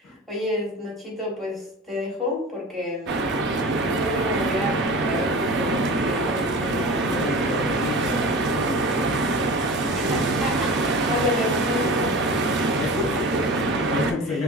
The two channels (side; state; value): both; normal; correlation 0.34